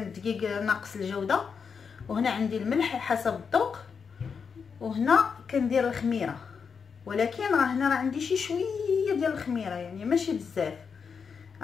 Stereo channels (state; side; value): quieter; right; 6.0 dB